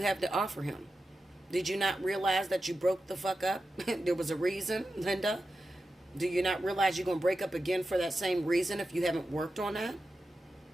have to offer him? Did you not realize that you broke the fuck up? There was a reason, Linda. Do you not realize you're going to break up again for that same reason if you haven't worked on that?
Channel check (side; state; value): both; normal; correlation 0.91